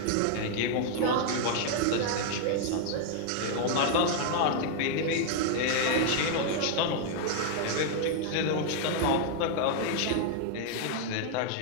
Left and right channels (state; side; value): different; both; correlation 0.00